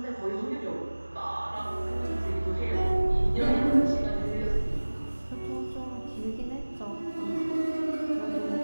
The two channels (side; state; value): both; inverted; correlation -1.00